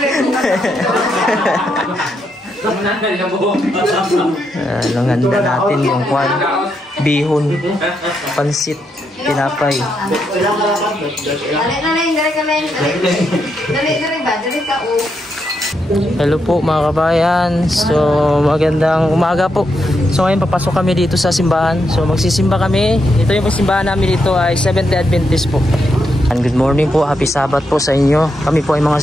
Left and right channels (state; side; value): normal; both; correlation 0.81